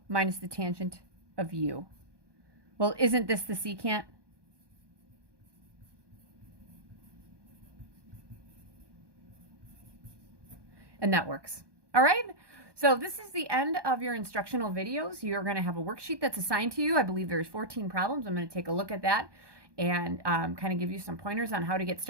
minus the tangent of u. Well, isn't this the secant? And that works. All right. So this is the end of your instructional videos. You're going to have a worksheet that's assigned to you. I believe there's 14 problems. I'm going to take a look at that and kind of give you some pointers on how to get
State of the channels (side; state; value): left; late; 1.2 ms